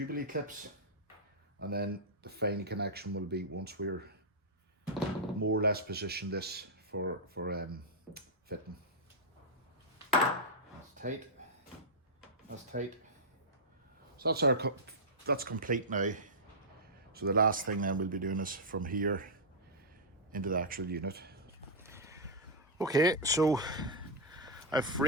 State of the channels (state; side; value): normal; both; correlation -0.08